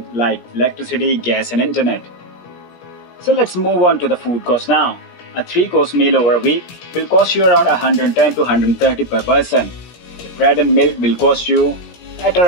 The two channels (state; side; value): late; right; 17 ms